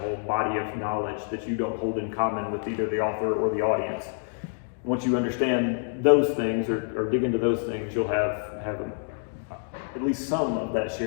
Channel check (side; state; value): right; silent; 57 dB below the other